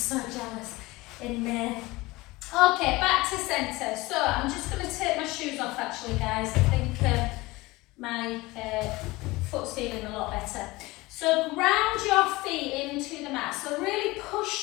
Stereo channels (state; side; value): quieter; right; 21.1 dB